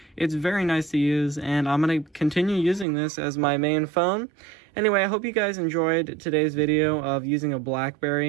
It's very nice to use, and I'm going to continue using this as my main phone. Anyway, I hope you guys enjoyed today's video of using a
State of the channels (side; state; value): left; drops out; at 2.9 s